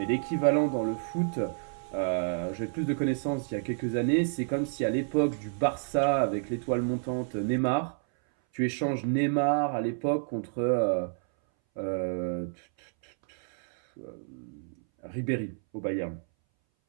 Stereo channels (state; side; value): silent; left; 58 dB below the other